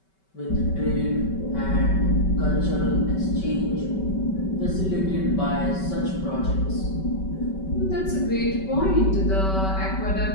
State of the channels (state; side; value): late; right; 5.2 ms